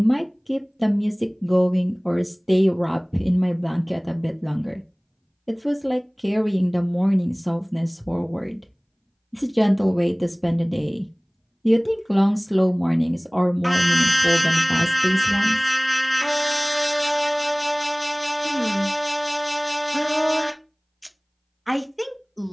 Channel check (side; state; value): both; identical; correlation 1.00